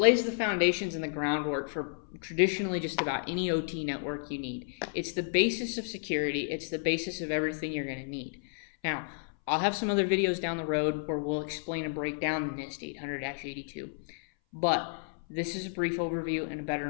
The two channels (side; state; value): right; silent; 57 dB below the other